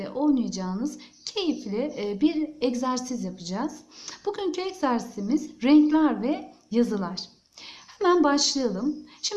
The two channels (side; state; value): both; identical; correlation 1.00